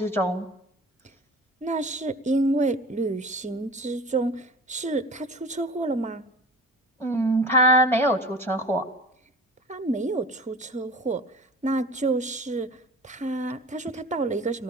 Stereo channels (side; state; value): both; normal; correlation 0.38